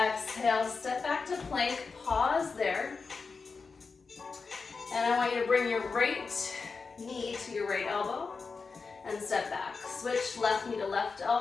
step back to plank, pause there. And I want you to bring your right knee to your right elbow and step back. Switch left knee to left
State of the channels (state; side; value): quieter; right; 4.7 dB